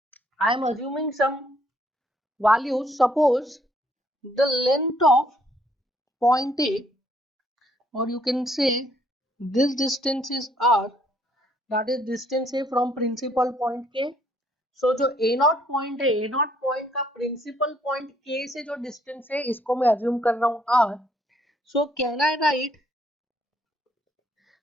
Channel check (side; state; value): both; normal; correlation 0.67